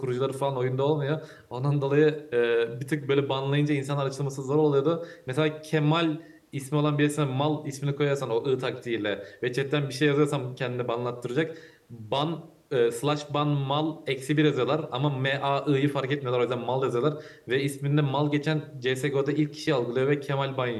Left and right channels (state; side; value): identical; both; correlation 1.00